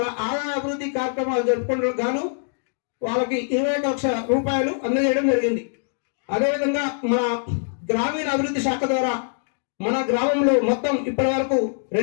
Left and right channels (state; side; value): silent; right; digital silence